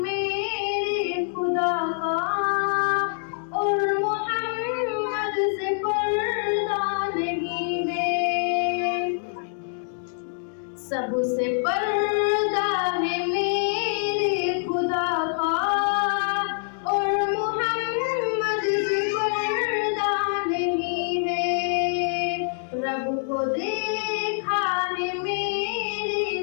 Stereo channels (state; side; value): silent; right; digital silence